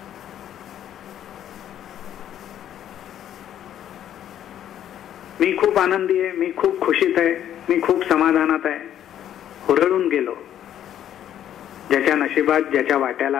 मी खूप आनंदी आहे, मी खूप खुशीत आहे, मी खूप समाधानात आहे, हुरळून गेलो. ज्याच्या नशिबात, ज्याच्या वाट्याला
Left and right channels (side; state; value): right; quieter; 10.7 dB